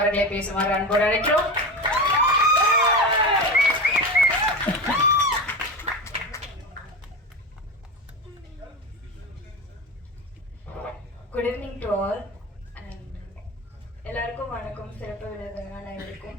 பேசுமாறு அன்போடு அழைக்கிறோம். Good evening to all and எல்லாருக்கும் வணக்கம். சிறப்பு விருதுகள்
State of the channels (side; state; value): both; normal; correlation 0.23